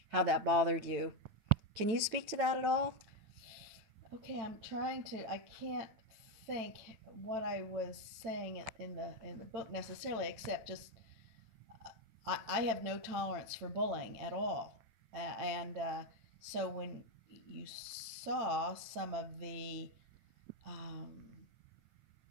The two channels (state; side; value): late; left; 9.0 ms